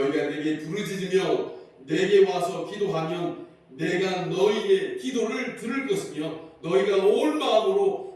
내게 부르짖으며 내게 와서 기도하면 내가 너희의 기도를 들을 것이며 너희가 온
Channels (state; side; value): identical; both; correlation 1.00